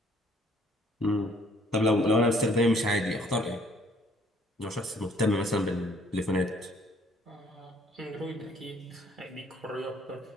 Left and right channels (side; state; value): both; normal; correlation 0.61